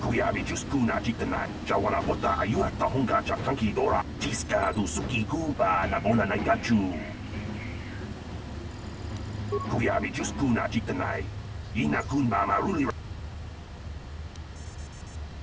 Kuyabi Juskuna Jitanan, Jawana Bota Ayuata Honga Jakanki Dora, Tiska du Suki Kuba Nabona Nagachu. Kuyabi Juskuna Jitanai, Ina Kunba Maruli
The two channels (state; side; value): identical; both; correlation 1.00